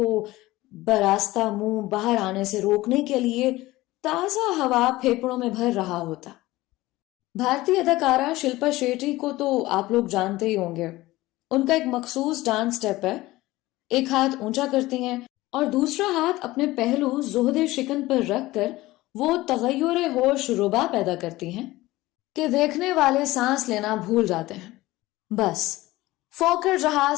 براستہ منہ باہر آنے سے روکنے کے لیے تازہ ہوا پھیپڑوں میں بھر رہا ہوتا. بھارتی اداکارہ شلپا شیٹی کو تو آپ لوگ جانتے ہی ہوں گے. ان کا ایک مخصوص ڈانس سٹیپ ہے. ایک ہاتھ اونچا کرتی ہیں اور دوسرا ہاتھ اپنے پہلو زہد شکن پر رکھ کر وہ تغیر ہوش ربا پیدا کرتی ہیں کہ دیکھنے والے سانس لینا بھول جاتے ہیں۔ بس فوکر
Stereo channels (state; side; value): quieter; right; 18.3 dB